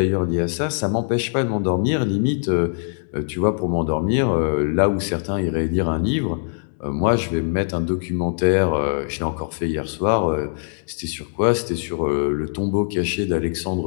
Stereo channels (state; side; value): silent; right; digital silence